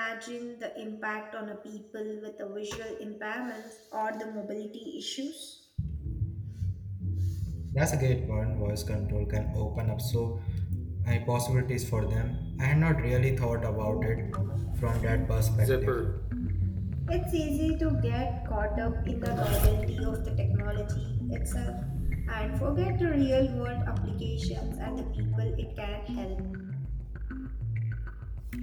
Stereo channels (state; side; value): identical; both; correlation 1.00